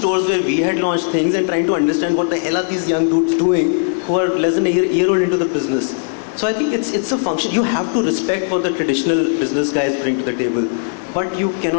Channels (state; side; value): silent; right; digital silence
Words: where we had launched things and trying to understand what the hell are these young dudes doing who are less than a year old into the business. So I think it's a function. You have to respect what the traditional business guys bring to the table, but you